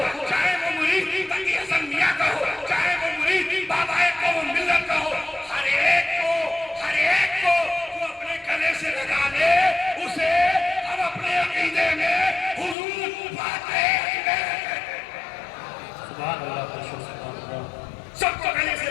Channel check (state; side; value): drops out; right; at 12.8 s